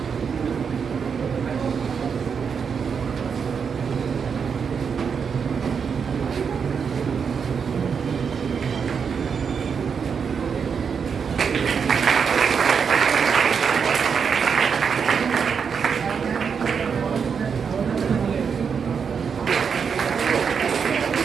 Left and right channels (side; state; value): left; quieter; 6.4 dB